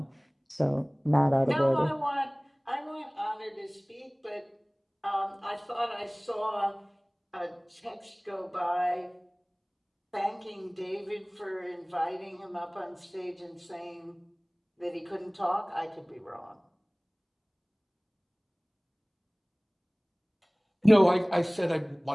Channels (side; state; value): both; identical; correlation 1.00